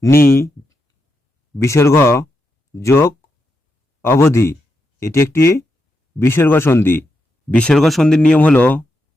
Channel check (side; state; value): both; normal; correlation 0.84